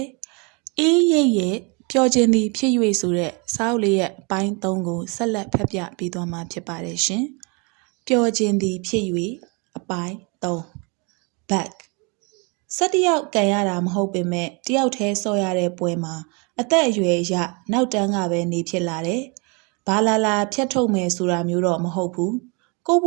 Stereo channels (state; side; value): quieter; left; 31.7 dB